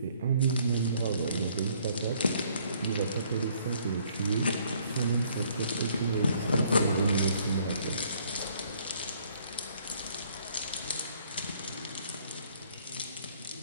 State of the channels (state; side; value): inverted; both; correlation -0.63